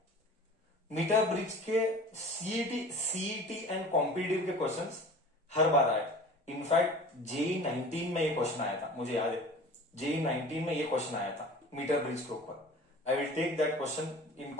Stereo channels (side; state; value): both; normal; correlation 0.41